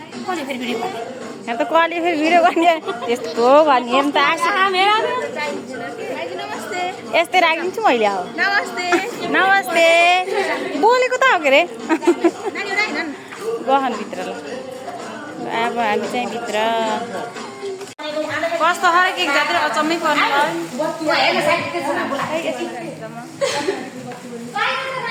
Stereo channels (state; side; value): identical; both; correlation 1.00